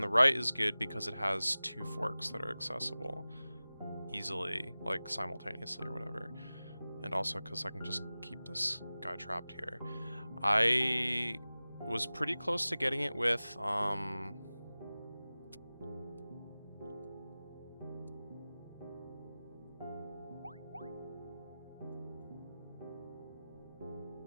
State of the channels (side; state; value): both; inverted; correlation -0.97